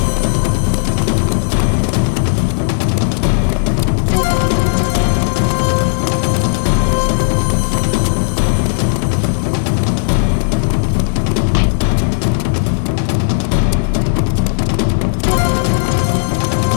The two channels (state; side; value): silent; right; digital silence